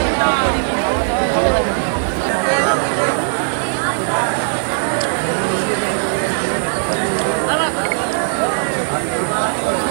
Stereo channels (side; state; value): left; silent; digital silence